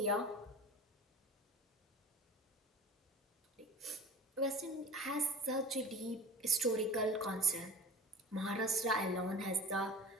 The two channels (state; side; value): normal; both; correlation 0.41